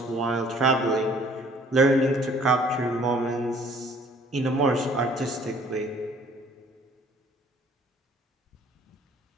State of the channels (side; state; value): both; normal; correlation 0.56